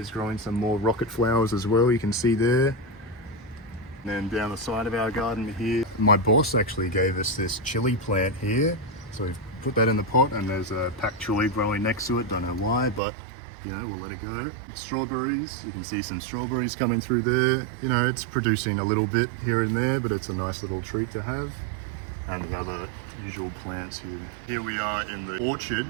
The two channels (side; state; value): left; drops out; at 13.0 s